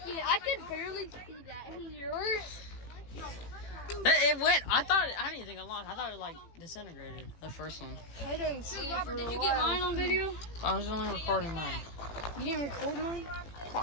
Yeah, I could barely see that in yours. It went. I didn't think it launched. I thought it like disintegrated. The first one. I didn't see. Robert, did you get mine on video? I was only recording mine. You didn't record mine?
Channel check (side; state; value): right; late; 18 ms